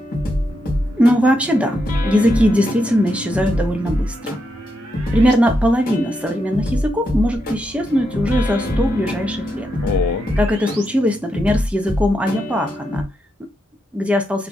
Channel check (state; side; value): normal; both; correlation 0.83